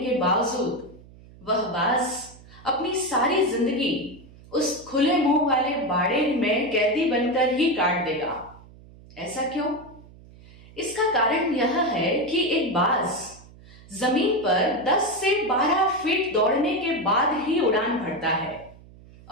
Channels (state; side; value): noise; right; hum, 22 dB below the sound